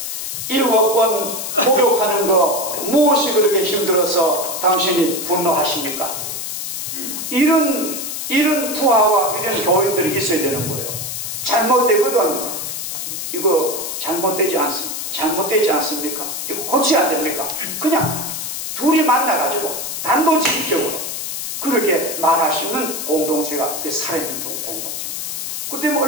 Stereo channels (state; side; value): noise; left; hiss, 5 dB below the sound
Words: 7번 목욕하는 거 무엇이 그렇게 힘들어서 당신이 분노하십니까? 이런 부하와 이런 교인들이 있어야 되는 거예요. 잘못되거든. 이거 잘못되지 않습니까? 이거 고쳐야 안 됩니까? 그냥 둘이 만나가지고 단도직입적으로 그렇게 말할 수 있는 공동체가 그 살아있는 공동체입니다. 그때면